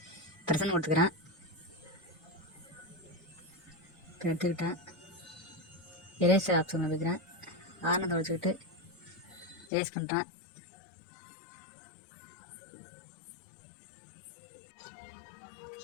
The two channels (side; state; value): right; drops out; at 9.7 s